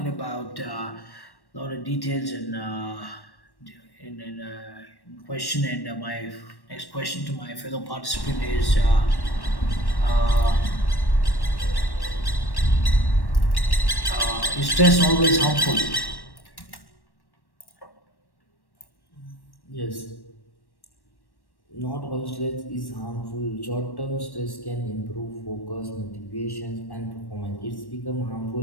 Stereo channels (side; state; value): right; late; 1.1 ms